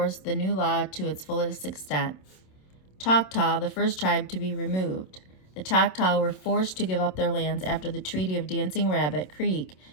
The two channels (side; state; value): right; late; 27 ms